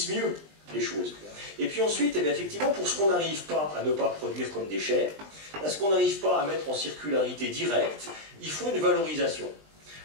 mieux les choses? Et puis ensuite, eh bien, effectivement, pour ce qu'on n'arrive pas à ne pas produire comme déchets, à ce qu'on n'arrive pas à mettre en circularité directe, il faut une valorisation.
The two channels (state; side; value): late; left; 20 ms